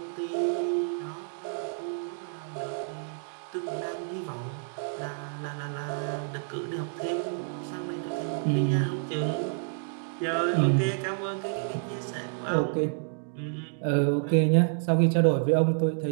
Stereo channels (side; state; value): left; silent; digital silence